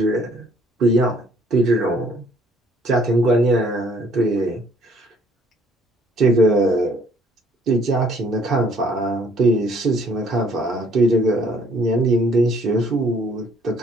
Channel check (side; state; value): both; normal; correlation 0.61